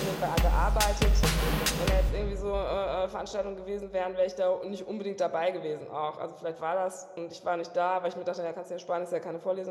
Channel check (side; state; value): both; identical; correlation 1.00